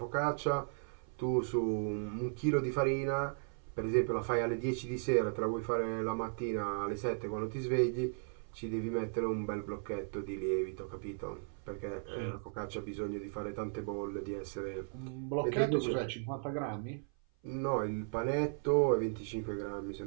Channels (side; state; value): left; silent; 54 dB below the other